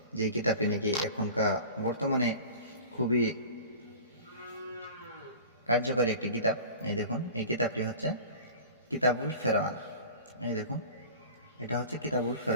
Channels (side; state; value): both; inverted; correlation -0.39